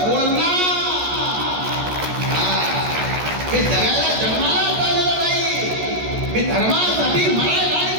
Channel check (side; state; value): left; late; 14 ms